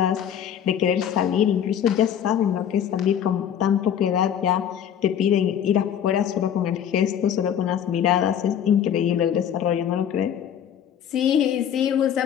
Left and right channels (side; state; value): right; quieter; 9.2 dB